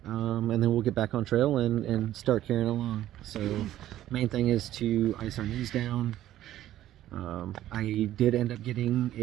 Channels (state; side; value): quieter; left; 13.1 dB